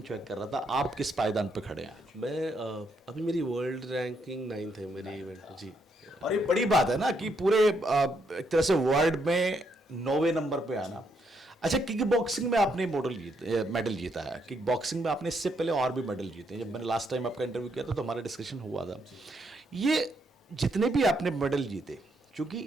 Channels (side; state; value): both; normal; correlation 0.75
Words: चेक कर रहा था। आप किस पायदान पे खड़े हैं? मैं अभी मेरी वर्ल्ड रैंकिंग 9th है मेरी इवेंट जी। और ये बड़ी बात है ना कि पूरे एक तरह से वर्ल्ड में 9वें नंबर पे आना। अच्छा, किक बॉक्सिंग में आपने मेडल जीता है। किक बॉक्सिंग में आपने इससे पहले और भी मेडल जीते हैं। जब मैंने लास्ट टाइम आपका इंटरव्यू किया था तो हमारा डिस्कशन हुआ था। ये जितने भी आपने मेडल जीते,